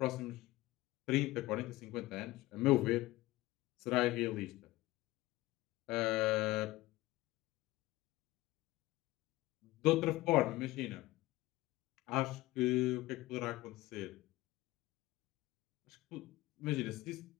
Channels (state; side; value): quieter; right; 18.6 dB